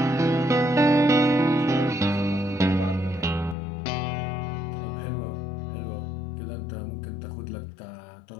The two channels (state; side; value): drops out; right; at 3.6 s